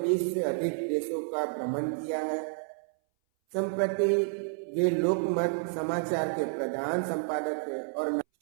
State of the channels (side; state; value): left; silent; 58 dB below the other